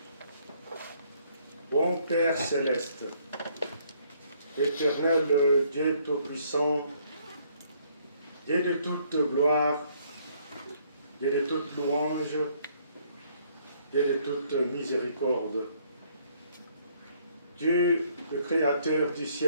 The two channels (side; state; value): both; inverted; correlation -0.67